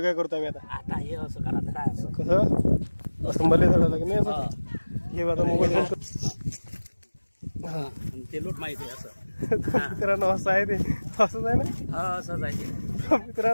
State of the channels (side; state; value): both; inverted; correlation -1.00